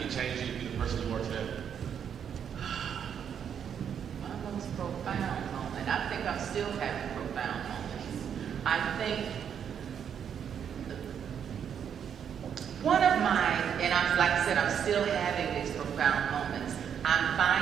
it changed you to be the person you are today? My most profound moment. I think I'm still having profound moments. I think one of mine, and like I said, I'm still having these profound moments. I'm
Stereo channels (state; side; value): quieter; left; 8.2 dB